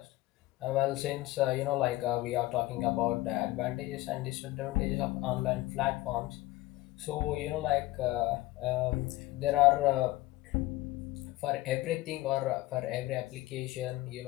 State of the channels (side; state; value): right; quieter; 18.1 dB